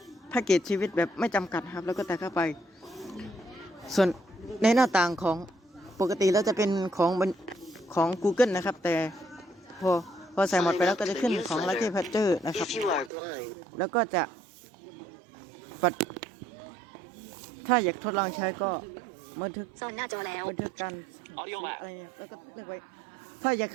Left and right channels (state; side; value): drops out; left; at 13.1 s